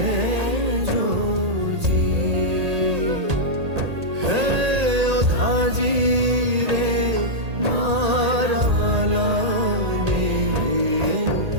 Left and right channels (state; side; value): late; left; 1.8 ms